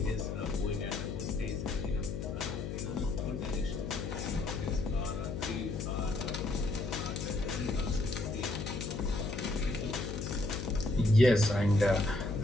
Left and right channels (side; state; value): left; noise; hum, 5 dB below the sound